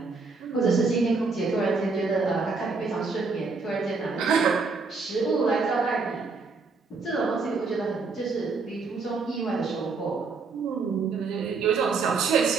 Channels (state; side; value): quieter; left; 4.4 dB